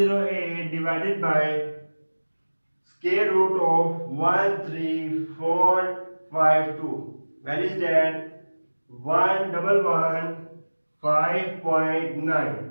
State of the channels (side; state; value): both; inverted; correlation -1.00